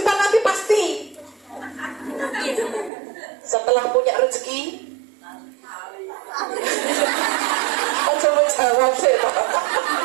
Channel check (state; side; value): drops out; left; at 2.9 s